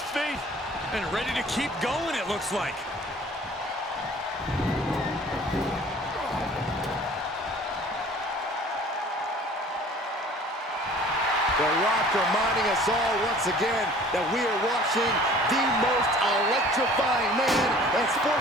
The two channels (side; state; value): both; normal; correlation 0.49